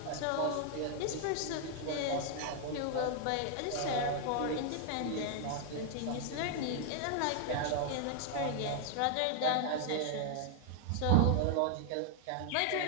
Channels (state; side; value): different; both; correlation 0.00